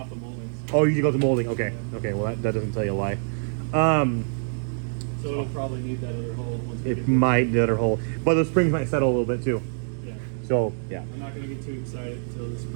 the moldings. Oh, you go to molding. Okay. Okay. Well, that doesn't tell you a lie. So it'll probably need that other hole. Once we It might need the other hole, but the springs might settle a little bit too. Yeah. So yeah. I'm not gonna get too excited until the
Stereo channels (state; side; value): silent; left; digital silence